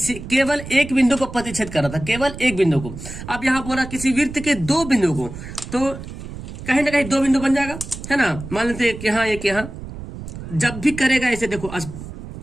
केवल एक बिंदु को प्रतिच्छेद कर रहा था, केवल एक बिंदु को। अब यहाँ बोला किसी विर्त के 2 बिंदु को, तो कहीं ना कहीं 2 बिंदु बन जाएगा, है ना। मान लेते एक यहाँ एक यहाँ, जब भी करेगा ऐसे देखो,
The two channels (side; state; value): right; noise; rumble, 11 dB below the sound